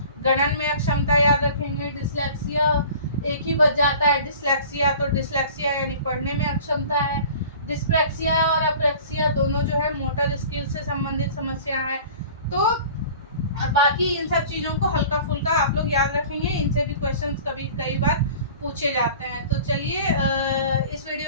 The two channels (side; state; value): both; inverted; correlation -0.43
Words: गणन में अक्षमता याद रखेंगे। डिस्लेक्सिया एक ही बच जाता है, डिस्लेक्सिया, तो डिस्लेक्सिया यानी पढ़ने में अक्षमता है। डिस्प्रैक्सिया और अप्रैक्सिया दोनों जो है मोटर स्किल से संबंधित समस्या है। तो बाकी इन सब चीज़ों को हल्का फुल्का आप लोग याद रखेंगे, इनसे भी क्वेश्चंस कई बार पूछे जाते हैं। तो चलिए इस